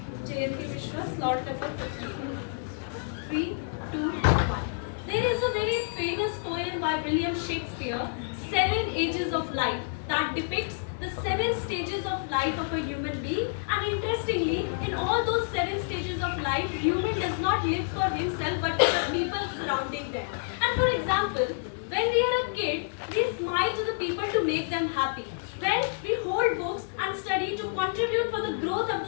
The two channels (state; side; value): silent; right; 56 dB below the other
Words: Jayanti Mishra, slot number 15. 3, 2, 1. There is a very famous poem by William Shakespeare, Seven Ages of Life, that depicts the 7 stages of life of a human being. And interestingly, in all those 7 stages of life, human does not live for himself but for the people surrounding them. And for example, when we are a kid, we smile to the people to make them happy. When we hold books and study to contribute for the growth of